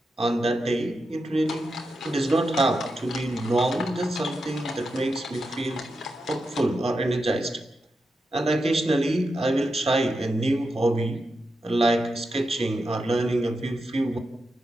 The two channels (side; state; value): both; normal; correlation 0.87